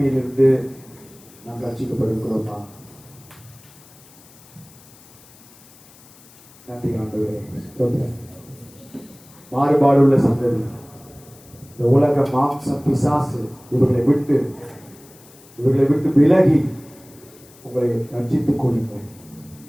நாம் ரட்சிக்கப்படுகிறோமா? நன்றி ஆண்டவரே. மாறுபாடு உள்ள சந்ததி, இந்த உலக மாம்சம் பிசாசு இவர்களை விட்டு விலகி உங்களை ரட்சித்துக் கொள்ளுங்கள்.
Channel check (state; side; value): noise; left; hiss, 24 dB below the sound